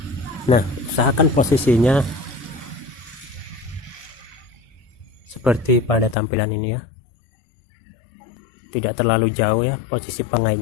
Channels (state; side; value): drops out; right; at 6.2 s